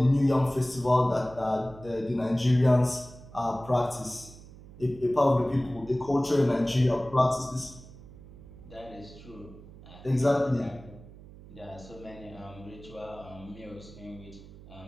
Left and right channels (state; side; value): noise; right; hum, 18 dB below the sound